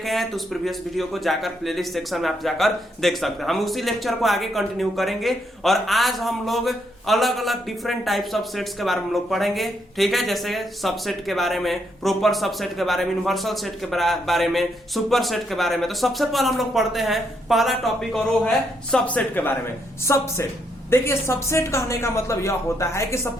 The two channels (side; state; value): both; normal; correlation 0.76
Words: हैं तो उस प्रीवियस वीडियो को जाकर प्लेलिस्ट सेक्शन में आप जाकर देख सकते हैं। हम उसी लेक्चर को आगे कंटिन्यू करेंगे और आज हम लोग अलग अलग डिफरेंट टाइप्स ऑफ सेट्स के बारे में हम लोग पढ़ेंगे। ठीक है, जैसे सबसेट के बारे में, प्रोपर सबसेट के बारे में, यूनिवर्सल सेट के बारे में, सुपर सेट के बारे में। तो सबसे पहले हम लोग पढ़ते हैं पहला टॉपिक और वो है सबसेट के बारे में। सबसेट, देखिए सबसेट कहने का मतलब यह होता है कि